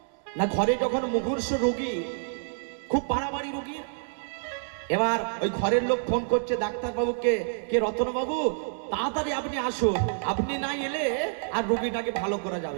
না, ঘরে যখন মুমূর্ষ রোগী, খুব বাড়াবাড়ি রোগী, এবার ওই ঘরের লোক ফোন করছে ডাক্তার বাবুকে, কে রতন বাবু তাড়াতাড়ি আপনি আসুন, আপনি না এলে আর রোগীটাকে ভালো করা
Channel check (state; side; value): silent; left; digital silence